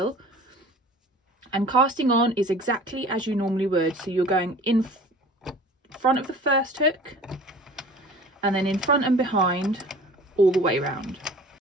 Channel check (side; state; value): both; normal; correlation 0.44